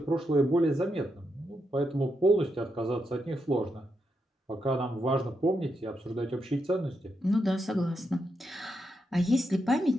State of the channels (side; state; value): both; normal; correlation 0.83